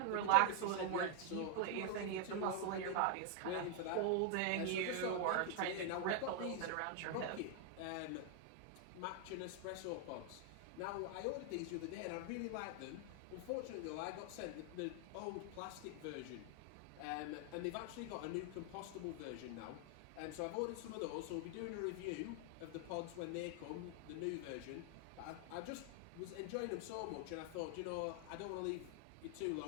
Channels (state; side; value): different; both; correlation 0.00